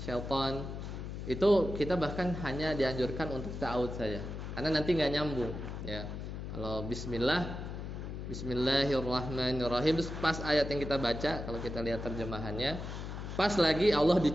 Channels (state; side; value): noise; left; hum, 7 dB below the sound